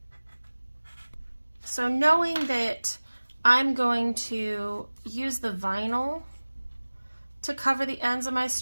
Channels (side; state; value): both; inverted; correlation -1.00